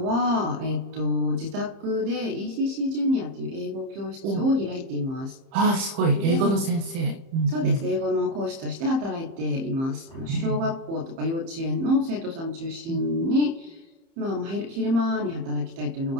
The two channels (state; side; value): late; left; 30 ms